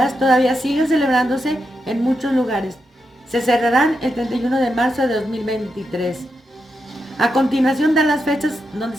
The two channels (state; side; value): normal; both; correlation 0.85